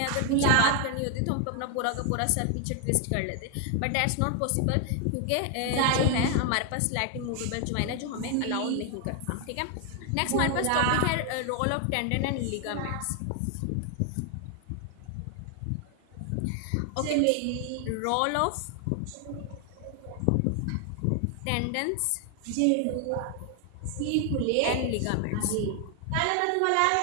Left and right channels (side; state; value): both; different; correlation 0.00